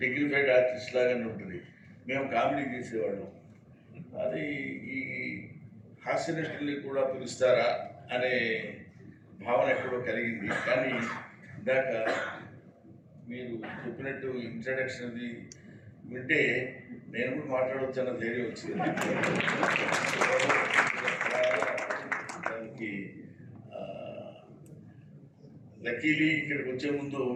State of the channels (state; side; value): identical; both; correlation 1.00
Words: డిగ్నిఫైడ్ ఆర్టిస్ట్ లాగానే ఉంటుంది. మేము కామెడీ చేసేవాళ్ళం. అది ఈ హాస్య నటుల్ని కూడా పిలుస్తారా అనే భావన ఎక్కడో కలిగింది. కానీ ఇందాక మీరు చెప్పినట్టు ఇంట్రడక్షన్ అది వింటే నేను కూడా మాట్లాడవచ్చు అన్న ధైర్యం వచ్చింది. దానికి లక్కీలీ ఇక్కడికి వచ్చే ముందు